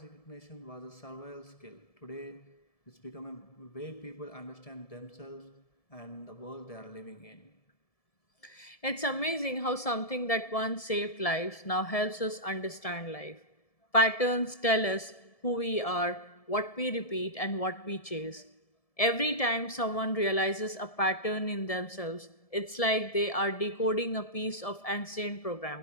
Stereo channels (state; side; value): late; right; 1.7 ms